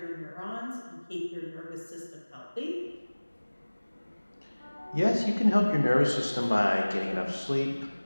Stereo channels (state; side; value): inverted; both; correlation -1.00